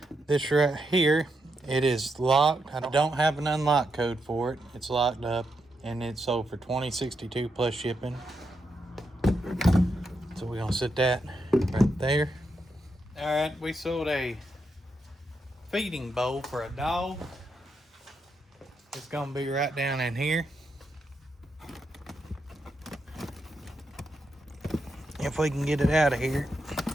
this right here. It is locked. I don't have an unlock code for it. It's locked up, and it sold for $20.62 plus shipping. So we're gonna set that right there. All right, we sold a feeding bowl for a dog. It's gonna be right down in here. If we can get it out of here.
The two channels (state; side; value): normal; both; correlation 0.83